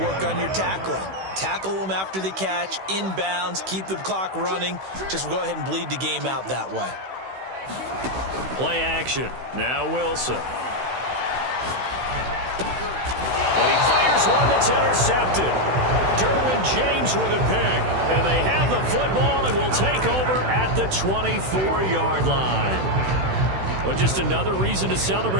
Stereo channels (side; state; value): left; late; 16 ms